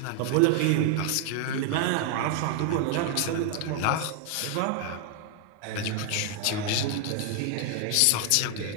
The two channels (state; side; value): different; both; correlation 0.00